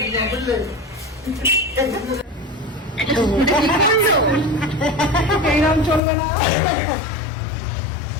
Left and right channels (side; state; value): right; drops out; at 6.0 s